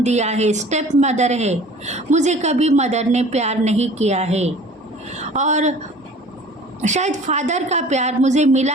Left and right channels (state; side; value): normal; both; correlation 0.46